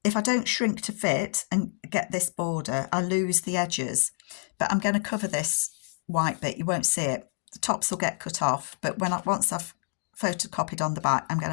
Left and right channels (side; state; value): right; silent; digital silence